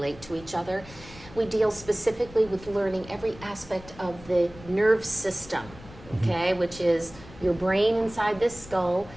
to each other. We deal specifically with learning every aspect of the nerve system, okay, which is your brain inside this skull,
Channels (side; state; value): left; noise; rumble, 19 dB below the sound